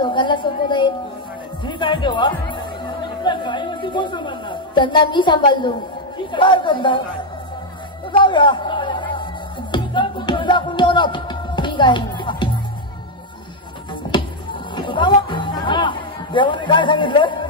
सोपवत आहे. ठीक आहे देवा. आपल्या गायीवरती कोण सांभाळणार? त्यांना मी सांभाळलो. काय करणार? जाऊया. दाखवून देऊ ना. ठीक आहे. देवाने काय सांगितलं?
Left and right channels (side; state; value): both; normal; correlation 0.02